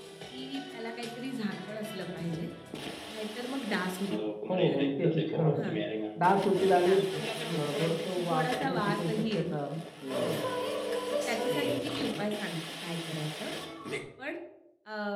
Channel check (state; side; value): identical; both; correlation 1.00